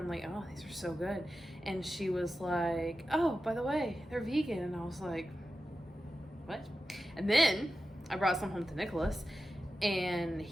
like, oh, these are so good. And she was like, oh, by the way, they're vegan. And I was like, what? And then I brought some home to Nicholas, and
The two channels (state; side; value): normal; both; correlation 0.92